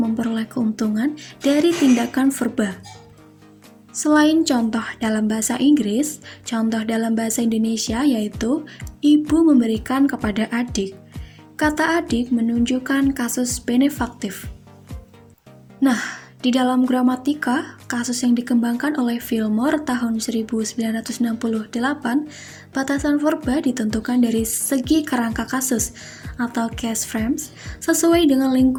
keuntungan dari tindakan verba. Selain contoh dalam bahasa Inggris, contoh dalam bahasa Indonesia yaitu ibu memberikan kepada adik. Kata adik menunjukkan kasus benefaktif. Nah, di dalam gramatika, kasus yang dikembangkan oleh Fillmore tahun 1968, batasan verba ditentukan dari segi kerangka kasus atau case frames sesuai dengan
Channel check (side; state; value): both; identical; correlation 1.00